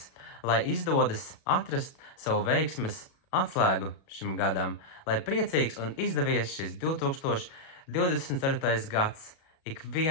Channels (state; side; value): late; right; 37 ms